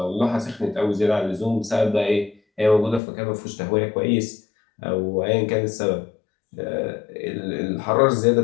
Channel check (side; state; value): right; drops out; at 3.0 s